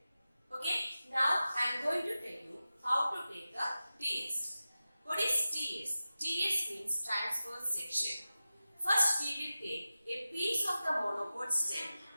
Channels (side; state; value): both; inverted; correlation -0.94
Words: Okay, now I am going to tell you how to take the TS. What is TS? TS means transverse section. First, we will take a piece of the monopod stem,